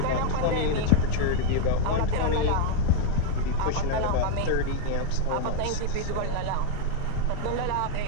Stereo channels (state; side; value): different; both; correlation 0.00